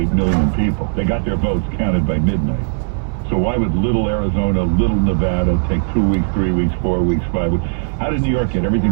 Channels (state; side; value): silent; left; 60 dB below the other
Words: million people. They got their votes counted by midnight. So why would little Arizona, little Nevada take 2 weeks, 3 weeks, 4 weeks, 5 weeks? How did New York get